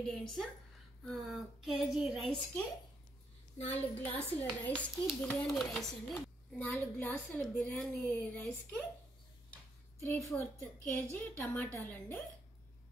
కేజీ రైస్కి 4 గ్లాసుల రైస్కి బిర్యానీ రైస్ అండి. 4 గ్లాసుల బిర్యానీ రైస్కి 3/4 కేజీ టమాటాలండి.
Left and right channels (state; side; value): normal; both; correlation 0.76